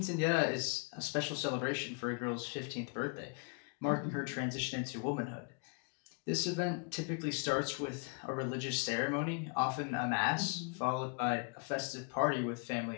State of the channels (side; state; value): right; quieter; 36.5 dB